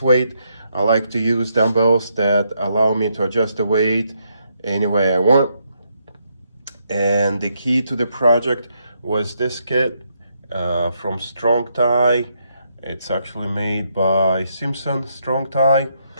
weight. I like to use dumbbells that allow me to adjust the weight any way I want. And the key to the project was this kit from Strong Tie. It's actually made by Simpson Strong Tie.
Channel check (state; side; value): inverted; both; correlation -0.77